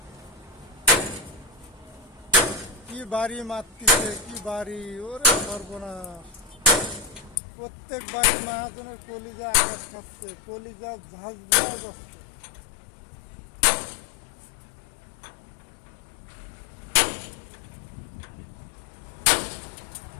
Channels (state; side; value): drops out; right; at 7.4 s